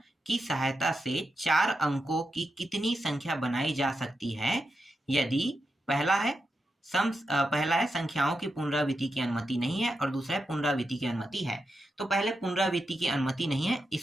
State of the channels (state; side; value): normal; both; correlation 0.87